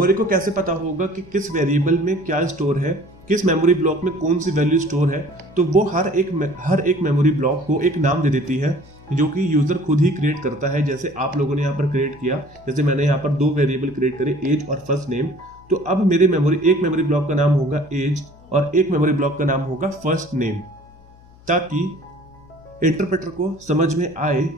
को कैसे पता होगा कि किस वेरिएबल में क्या स्टोर है, किस मेमोरी ब्लॉक में कौन सी वैल्यू स्टोर है? तो वो हर एक मेमोरी ब्लॉक को एक नाम दे देती है जो कि यूजर खुद ही क्रिएट करता है। जैसे आप लोगों ने यहाँ पर क्रिएट किया, जैसे मैंने यहाँ पर 2 वेरिएबल क्रिएट करे, एज और फर्स्ट नेम। तो अब मेरे एक मेमोरी ब्लॉक का नाम होगा एज और एक मेमोरी ब्लॉक का नाम होगा फर्स्ट नेम, ताकि इंटरप्रेटर को समझ में आए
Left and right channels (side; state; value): left; noise; hum, 25 dB below the sound